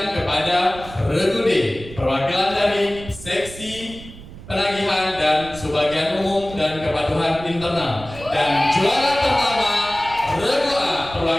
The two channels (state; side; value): noise; right; rumble, 16 dB below the sound